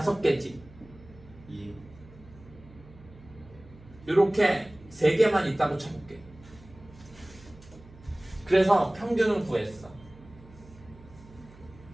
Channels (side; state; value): right; noise; hum, 21 dB below the sound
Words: 2. 요렇게 3개만 있다고 쳐볼게. 그래서 평균을 구했어.